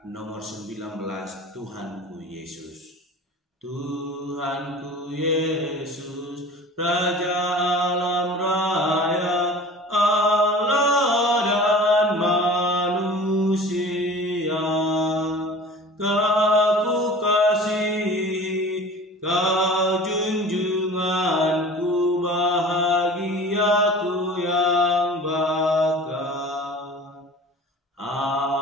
nomor 19, Tuhanku Yesus. Tuhanku Yesus, Raja alam raya, Allah dan manusia, Kau kasihi, Kau junjunganku, bahagiaku yang bakal.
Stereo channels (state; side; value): normal; both; correlation 0.41